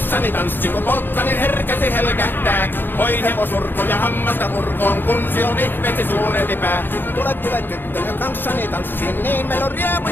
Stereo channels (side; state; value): right; late; 0.097 ms